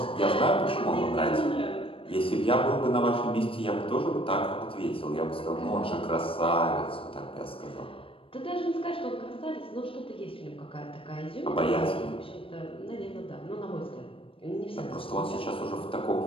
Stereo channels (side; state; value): right; late; 0.26 ms